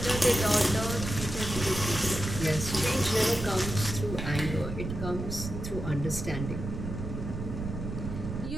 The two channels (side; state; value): right; noise; rumble, 6 dB below the sound